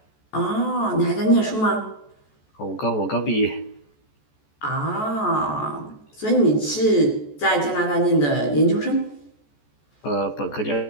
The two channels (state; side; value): late; right; 14 ms